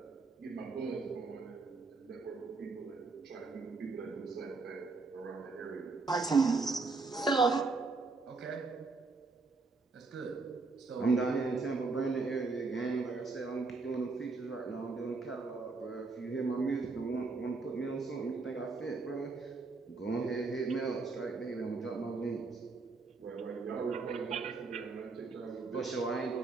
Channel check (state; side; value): quieter; left; 4.0 dB